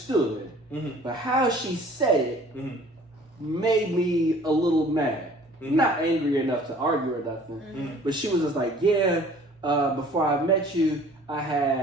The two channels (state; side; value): normal; both; correlation 0.51